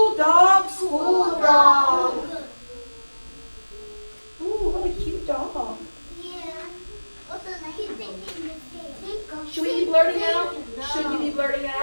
dog, school dog. Ooh, what a cute dog. Yeah. What's the name? Should we be blurting out? Should we be blurting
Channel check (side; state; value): both; inverted; correlation -1.00